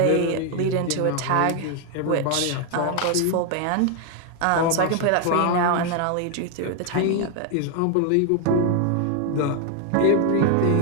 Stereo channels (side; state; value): both; different; correlation 0.00